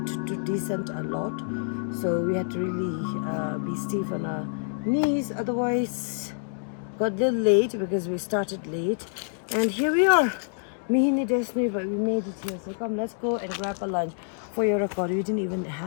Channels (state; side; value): silent; right; digital silence